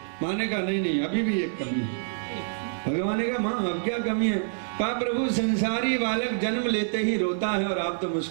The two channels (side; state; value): left; silent; digital silence